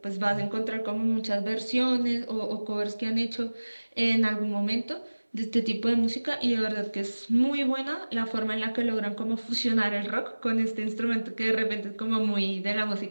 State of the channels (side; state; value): both; inverted; correlation -1.00